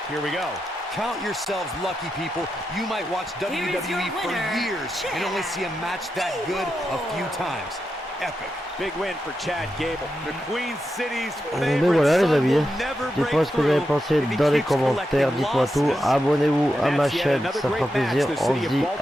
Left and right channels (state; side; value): normal; both; correlation 0.87